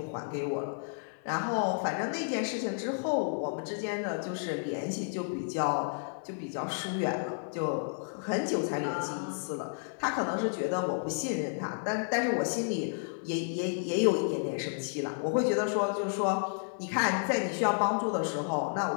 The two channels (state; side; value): silent; right; 57 dB below the other